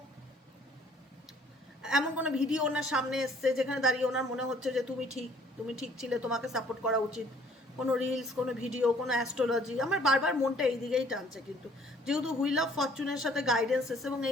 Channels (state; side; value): normal; both; correlation 0.59